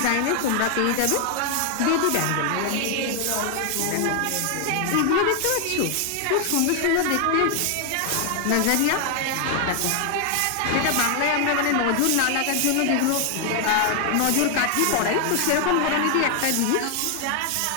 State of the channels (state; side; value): different; both; correlation 0.00